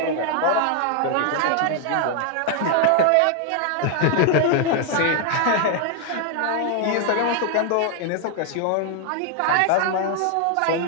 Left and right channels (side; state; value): both; different; correlation 0.00